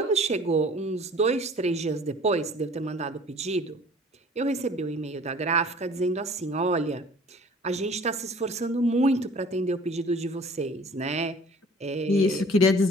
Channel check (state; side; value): normal; both; correlation 0.49